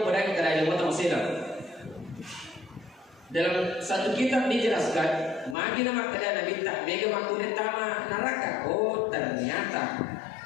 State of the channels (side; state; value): right; drops out; at 5.6 s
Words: berani kerana ilmu masih lagi. Dalam satu kitab dijelaskan, magi nama kerana Nabi tak mega makurai taman neraka. Oh